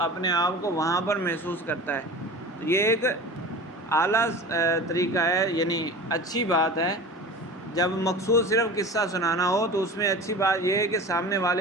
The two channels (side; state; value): both; normal; correlation 0.35